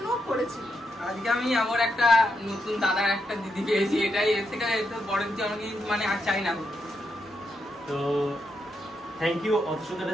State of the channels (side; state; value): both; normal; correlation 0.82